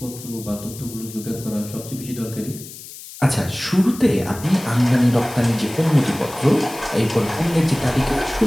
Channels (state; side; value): noise; left; hiss, 15 dB below the sound